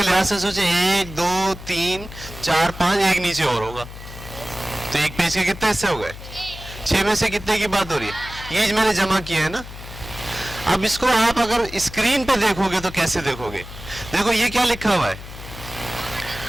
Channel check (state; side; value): noise; left; hum, 13 dB below the sound